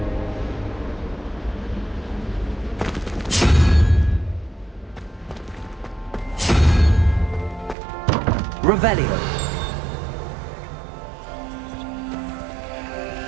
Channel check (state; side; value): drops out; left; at 7.8 s